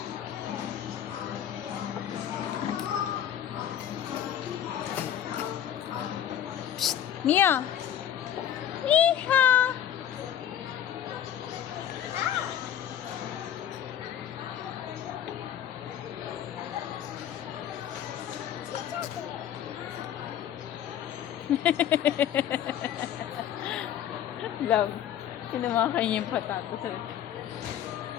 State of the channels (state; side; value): quieter; right; 10.4 dB